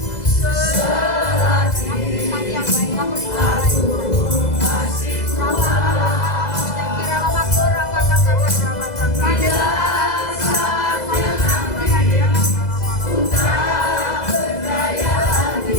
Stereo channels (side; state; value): right; late; 2.0 ms